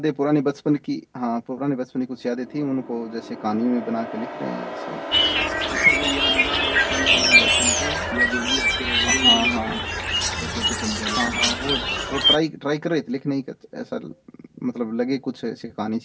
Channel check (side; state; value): both; identical; correlation 1.00